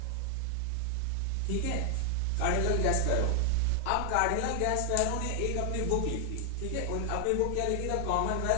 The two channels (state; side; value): different; both; correlation 0.00